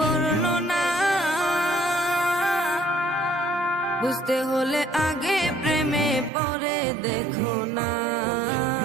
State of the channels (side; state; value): left; drops out; at 6.3 s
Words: বুঝতে হলে আগে প্রেমে পরে দেখো না,